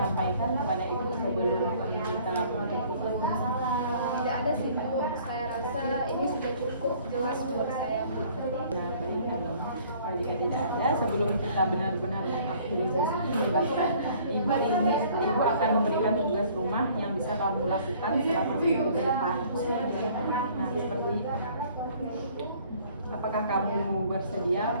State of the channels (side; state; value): both; inverted; correlation -0.56